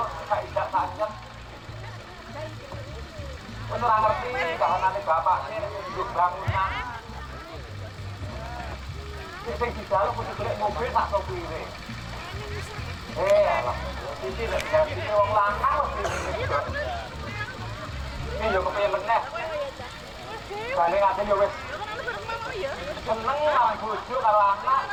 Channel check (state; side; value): identical; both; correlation 1.00